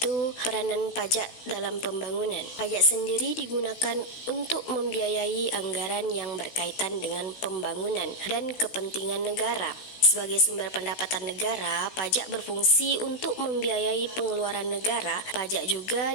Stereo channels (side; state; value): right; late; 16 ms